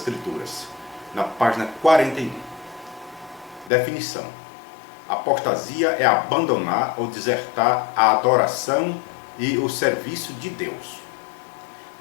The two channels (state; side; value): drops out; right; at 3.7 s